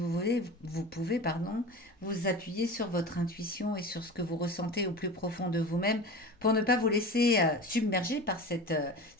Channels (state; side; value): normal; both; correlation 0.32